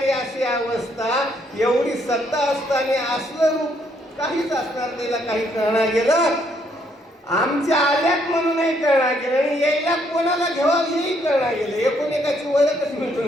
अशी अवस्था, एवढी सत्ता असताना असलं रूप काहीच असणार त्याला काही कळणार गेलं. आमच्या आल्यात म्हणूनही कळणार गेलं आणि यायला कोणाला घ्यावं हेही कळणार गेलं. एकूण एकाची ओळखच मिटून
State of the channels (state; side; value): normal; both; correlation 0.70